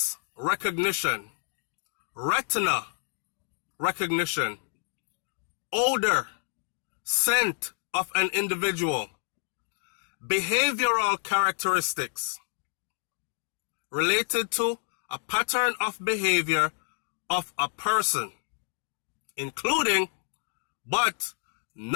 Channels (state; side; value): silent; right; 59 dB below the other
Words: recognition, retina recognition, odor, scent of an individual, behavioral characteristics related to a pattern of behavior of a person, including but